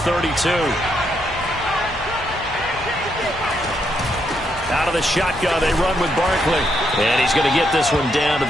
Out of the shotgun, they run with Barkley. And he's going to get this one down to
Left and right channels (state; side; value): normal; both; correlation 0.78